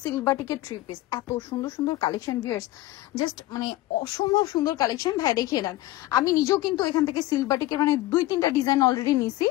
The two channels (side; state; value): right; quieter; 16.9 dB